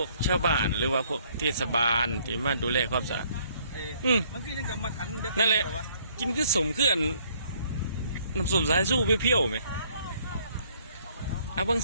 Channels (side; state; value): both; inverted; correlation -0.63